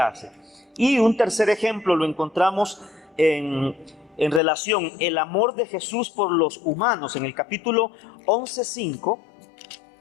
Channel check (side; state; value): right; drops out; at 4.4 s